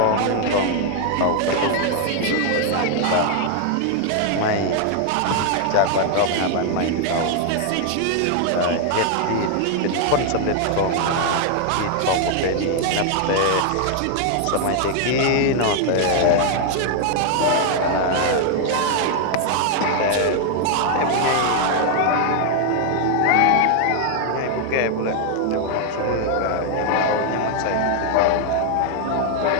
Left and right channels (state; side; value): different; both; correlation 0.00